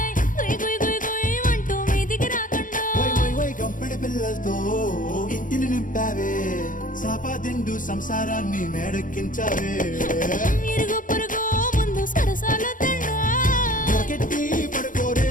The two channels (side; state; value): right; late; 0.39 ms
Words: గుయ్ గుయ్ గుయ్ గుయ్ అంటూ మీదికి రాకుండా కంపెడి పిల్లలతో ఇంటిని నింపావే సాపాదిండు సంసారాన్ని మేడెక్కించావే ఇరుగు పొరుగు ముందు సరసాల తండా రాకెట్టి పడుకోరే